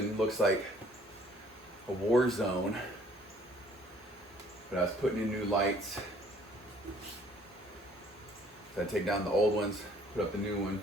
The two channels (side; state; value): both; normal; correlation 0.59